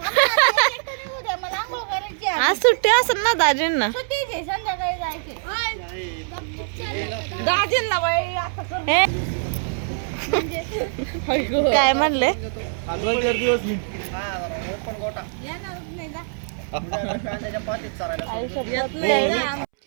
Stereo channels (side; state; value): left; silent; 63 dB below the other